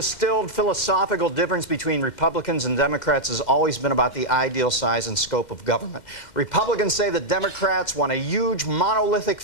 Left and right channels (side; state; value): right; late; 2.1 ms